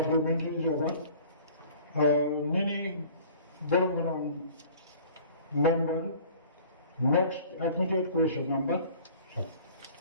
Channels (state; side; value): inverted; both; correlation -0.48